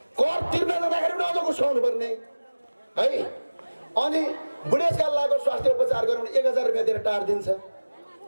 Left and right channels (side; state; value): both; inverted; correlation -1.00